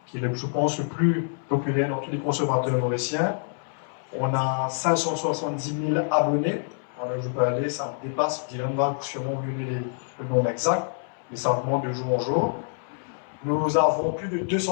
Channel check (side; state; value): right; silent; 61 dB below the other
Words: qui est, je pense, le plus populaire dans tous les consommateurs mauriciens. On a 570 000 abonnés. Alors je peux aller, ça me dépasse, Dylan va sûrement vous donner le nombre exact, mais ça augmente de jour en jour. Nous avons plus de